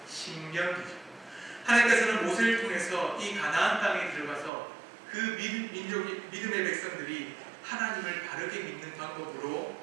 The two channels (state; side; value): drops out; left; at 4.5 s